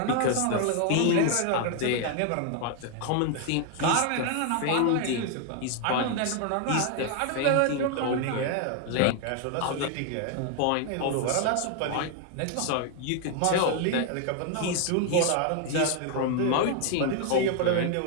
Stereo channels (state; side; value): different; both; correlation 0.01